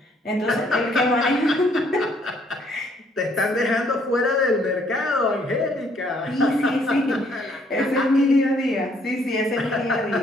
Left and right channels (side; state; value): both; normal; correlation 0.66